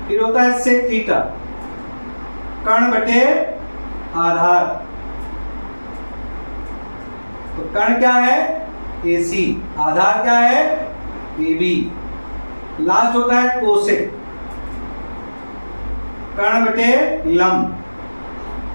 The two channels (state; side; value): inverted; both; correlation -1.00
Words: फिर होता है sec थीटा, कर्ण बटे आधार। तो कर्ण क्या है, AC, आधार क्या है, AB। लास्ट होता है कोसेक, कर्ण बटे लंब।